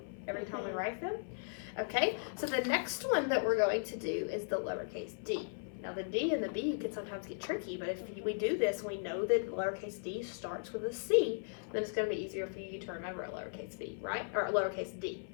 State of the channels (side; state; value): right; silent; 53 dB below the other